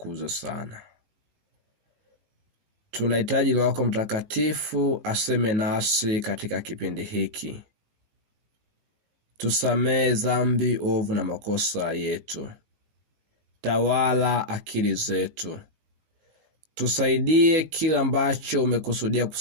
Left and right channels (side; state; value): left; late; 18 ms